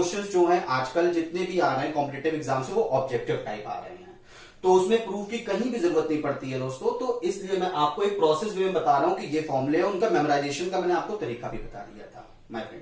जो हैं आजकल जितने भी आ रहे हैं कॉम्पिटेटिव एग्जाम से, वो ऑब्जेक्टिव टाइप आ रहे हैं, तो उसमें प्रूफ की कहीं भी जरूरत नहीं पड़ती है दोस्तों। तो इसलिए मैं आपको एक प्रोसेस वे में बता रहा हूं कि ये फॉर्मूले है, उनका मेमोराइजेशन का मैंने आपको तरीका भी बता दिया था माय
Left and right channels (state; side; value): identical; both; correlation 1.00